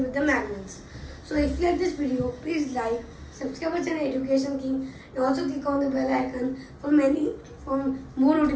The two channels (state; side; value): identical; both; correlation 1.00